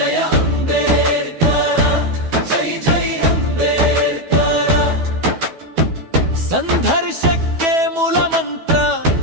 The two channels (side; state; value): left; late; 12 ms